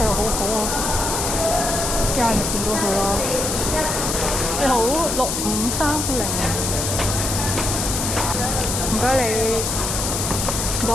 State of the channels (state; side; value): noise; left; hiss, 2 dB below the sound